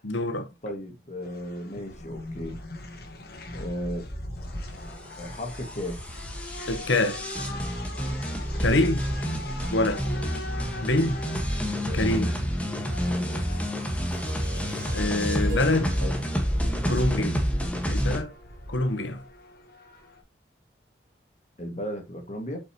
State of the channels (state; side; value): normal; both; correlation 0.64